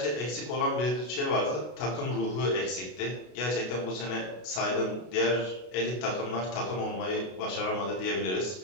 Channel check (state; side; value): late; right; 33 ms